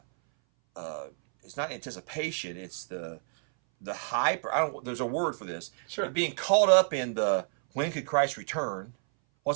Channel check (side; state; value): left; silent; 58 dB below the other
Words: not anticipation, it's the hype. There's a word for this. Sure. Being caught up in the, when could Christ return?